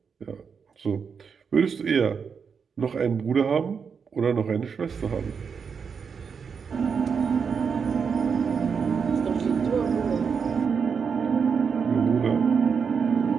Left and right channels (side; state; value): left; quieter; 6.1 dB